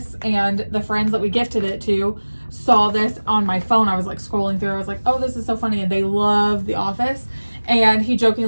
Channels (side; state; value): both; inverted; correlation -1.00